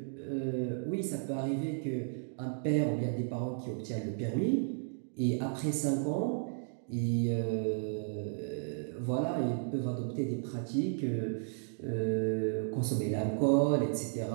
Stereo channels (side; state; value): left; silent; digital silence